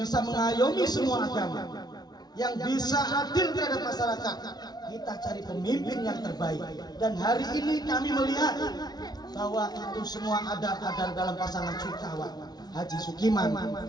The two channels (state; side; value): late; right; 0.19 ms